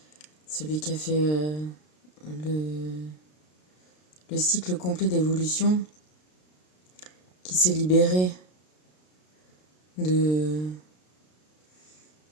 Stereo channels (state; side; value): late; right; 33 ms